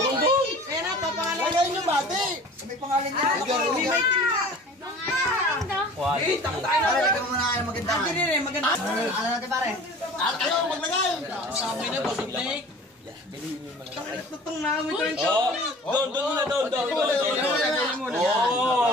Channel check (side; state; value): both; normal; correlation 0.44